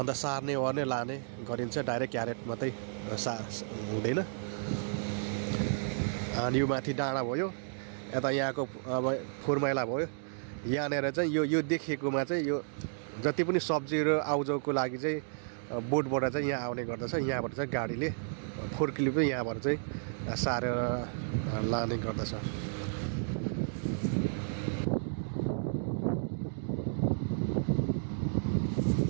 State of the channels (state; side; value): silent; left; digital silence